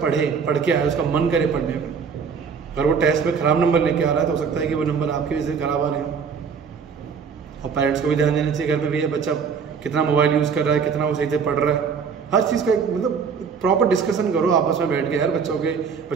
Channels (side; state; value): left; quieter; 6.1 dB